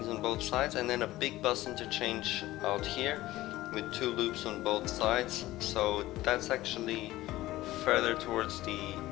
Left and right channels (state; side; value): quieter; right; 16.7 dB